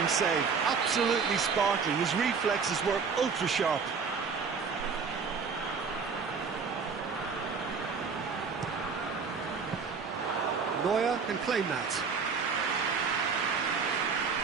save, absolutely sparkling. His reflexes were ultra-sharp. Neuer can claim that.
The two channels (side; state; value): left; quieter; 5.5 dB